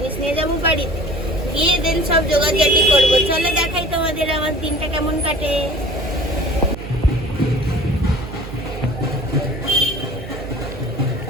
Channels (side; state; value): right; noise; hum, 11 dB below the sound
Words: নিয়ে যাবো বাড়িতে, গিয়ে দেন সব জোগাড়জাটি করবো। চলো দেখাই তোমাদের আমার দিনটা কেমন কাটে।